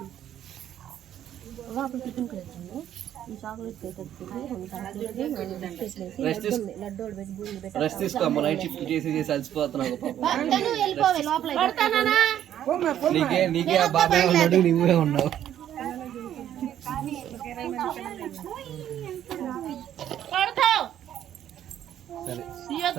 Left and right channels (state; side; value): quieter; left; 10.9 dB